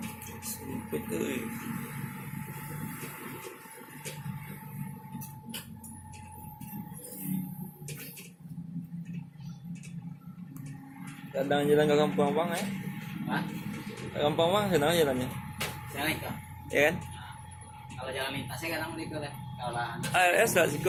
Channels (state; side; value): identical; both; correlation 1.00